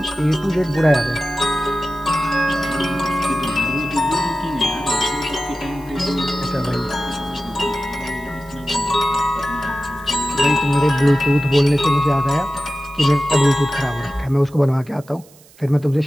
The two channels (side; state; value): right; noise; hiss, 26 dB below the sound